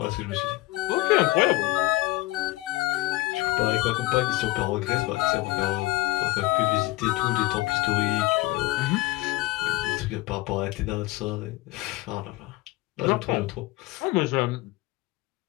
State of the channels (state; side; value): quieter; right; 20.2 dB